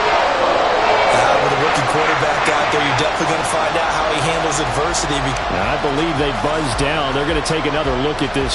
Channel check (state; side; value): identical; both; correlation 1.00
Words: With a rookie quarterback out there, you're definitely going to find out how he handles adversity. I believe they buzzed down. They're going to take another look at